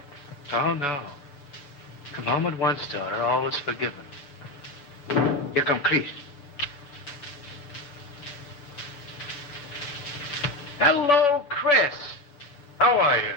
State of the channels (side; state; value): right; late; 6.9 ms